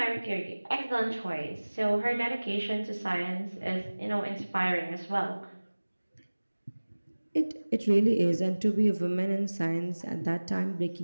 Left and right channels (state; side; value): inverted; both; correlation -1.00